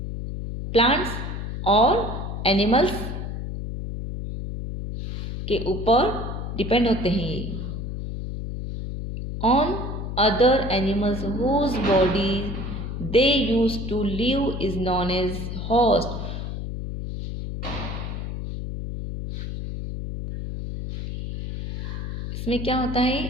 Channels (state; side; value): noise; left; hum, 5 dB below the sound